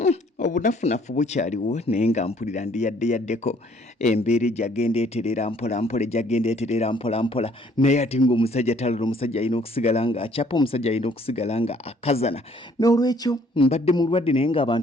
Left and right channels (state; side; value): normal; both; correlation 0.61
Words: Obunafunafu bukyaliwo naye nga mpulira ndi yaddeyaddeko embeera ejjagenda eterera mpolampola ejjagenda eterera mpolampola naye ate ng'omusajja talala omusajja alina okusigala nga akyapa, omusajja alina okusigala nga akazana. N'olwekyo mbadde mulwadde naye